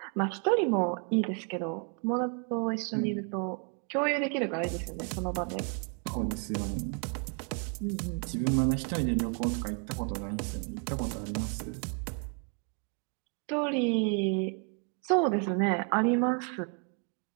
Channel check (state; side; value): quieter; left; 39.5 dB